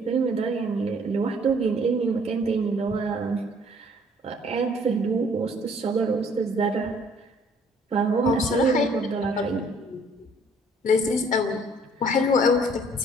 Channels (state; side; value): normal; both; correlation 0.59